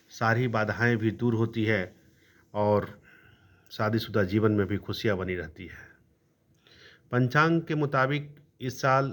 सारी बाधाएं भी दूर होती है और शादीशुदा जीवन में भी खुशियां बनी रहती है। पंचांग के मुताबिक इस साल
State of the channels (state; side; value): identical; both; correlation 1.00